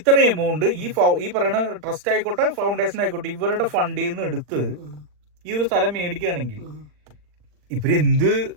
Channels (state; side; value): late; left; 40 ms